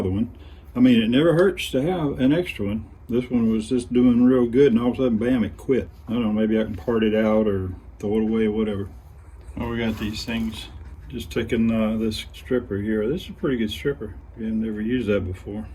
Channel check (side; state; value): both; identical; correlation 1.00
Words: one. I mean, it never hurts to have an extra one. This one was just doing real good, and all of a sudden, bam, it quit. I don't know, maybe I can part it out or throw it away or whatever. Oh, we got these things. Just taking this stripper here. This is a pretty good stripper. I've never used that before.